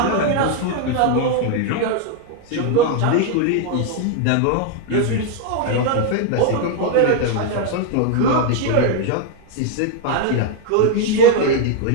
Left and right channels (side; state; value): both; different; correlation 0.00